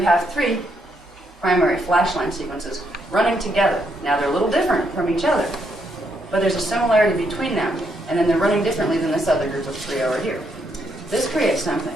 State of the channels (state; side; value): normal; both; correlation 0.76